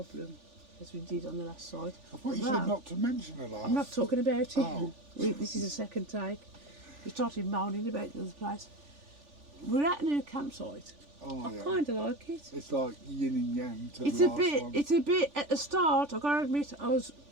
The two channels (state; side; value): late; left; 3.4 ms